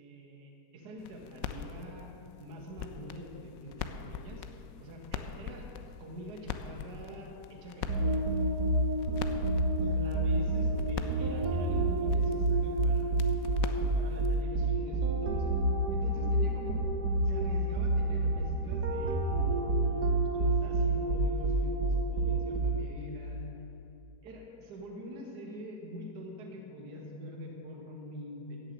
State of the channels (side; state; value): left; late; 4.1 ms